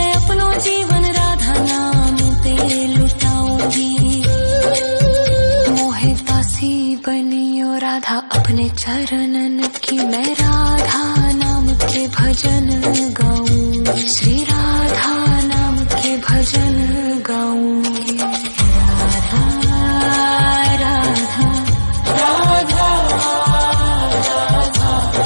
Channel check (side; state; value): both; inverted; correlation -1.00